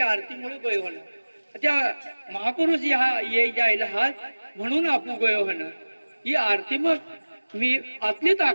आरती मुळे गोयो होणं त्या महापुरुष या ये जायला हात म्हणून आपू गोयो होणं ही आरती मग मी आतली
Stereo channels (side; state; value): both; inverted; correlation -1.00